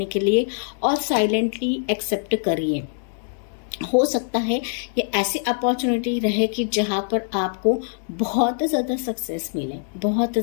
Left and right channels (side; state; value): right; silent; 63 dB below the other